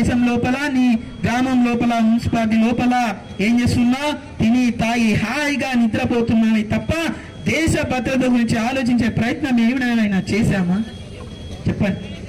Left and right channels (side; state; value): both; identical; correlation 1.00